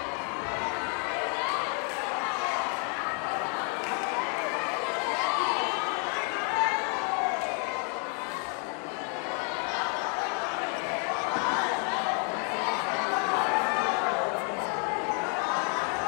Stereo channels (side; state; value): right; quieter; 37.3 dB